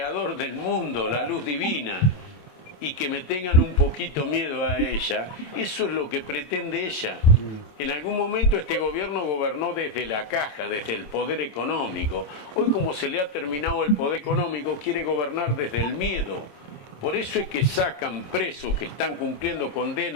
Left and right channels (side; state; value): right; late; 27 ms